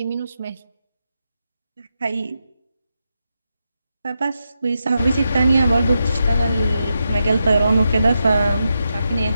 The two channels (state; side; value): inverted; both; correlation -0.86